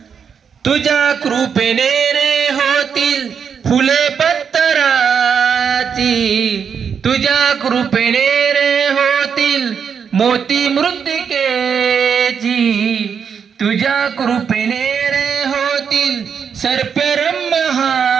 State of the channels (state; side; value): quieter; left; 6.9 dB